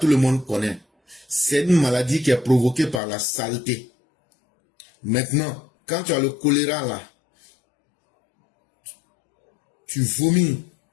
le monde connaît. C'est une maladie qui est provoquée par la saleté. Maintenant, quand tu as le choléra, là, tu vomis.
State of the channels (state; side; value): drops out; right; at 3.0 s